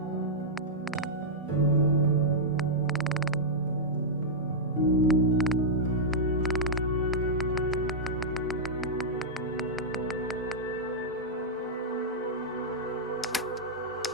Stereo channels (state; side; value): normal; both; correlation -0.08